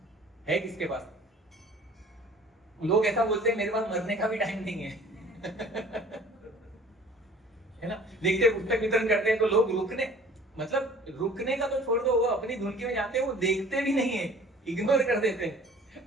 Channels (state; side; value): normal; both; correlation 0.49